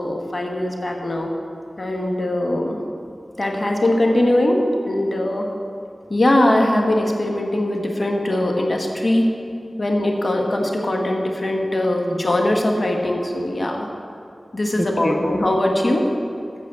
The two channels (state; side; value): normal; both; correlation 0.96